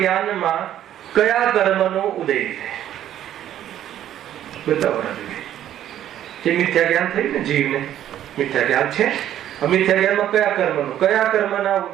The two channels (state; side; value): quieter; left; 11.5 dB